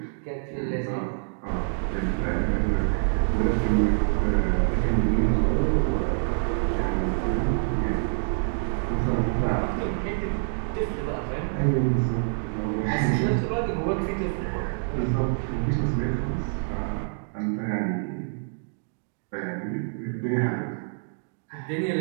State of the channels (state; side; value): silent; left; digital silence